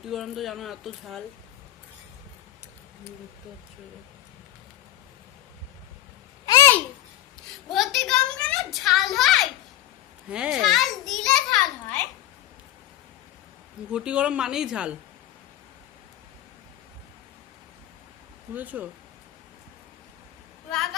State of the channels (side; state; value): right; quieter; 13.2 dB